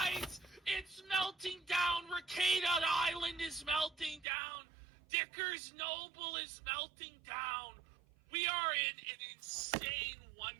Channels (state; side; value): drops out; left; at 4.2 s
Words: It's melting down. Rekieta Island is melting down. Dicker's Noble is melting down. We are in an insane